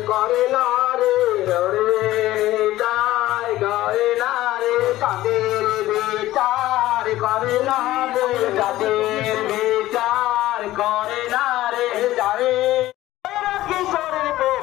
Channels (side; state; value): right; quieter; 15.7 dB